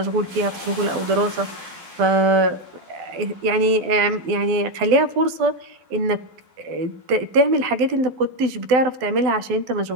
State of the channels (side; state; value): left; late; 12 ms